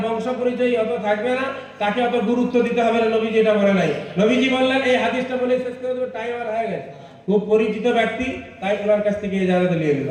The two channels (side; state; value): both; identical; correlation 1.00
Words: বংশ পরিচয় অত থাকবে না তাকে অত গুরুত্ব দিতে হবে না, নবীজি এটা বলে নাই। নবীজি বললেন, এই হাদিসটা বলে শেষ করে দেবো, টাইম আর হয়ে গেছে। খুব পরিচিত ব্যক্তি, তাই ওনার কাছ থেকে ইজাজত নিয়ে